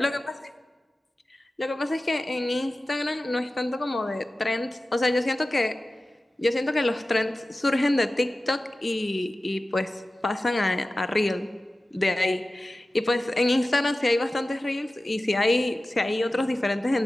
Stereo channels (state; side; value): normal; both; correlation 0.96